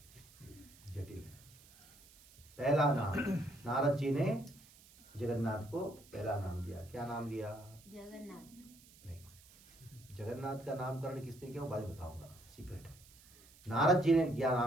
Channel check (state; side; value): noise; right; hiss, 24 dB below the sound